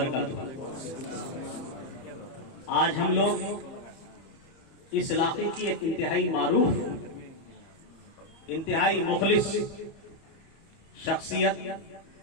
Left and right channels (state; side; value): late; right; 30 ms